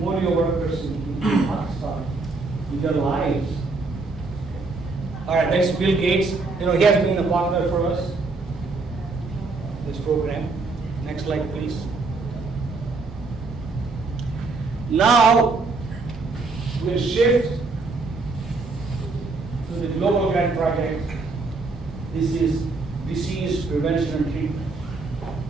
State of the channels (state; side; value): quieter; left; 3.7 dB